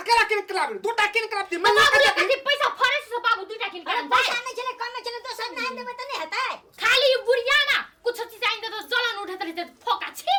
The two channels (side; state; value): both; identical; correlation 1.00